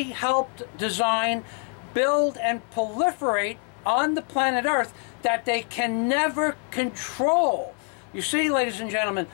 helped design, build, and proliferate on the planet Earth that they can never control. You see, ladies and gentlemen,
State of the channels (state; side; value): quieter; right; 38.5 dB